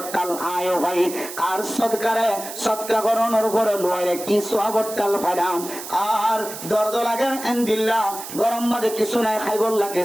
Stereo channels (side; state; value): right; noise; hiss, 10 dB below the sound